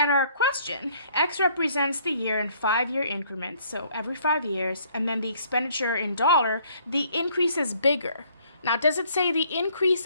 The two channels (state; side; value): inverted; both; correlation -0.62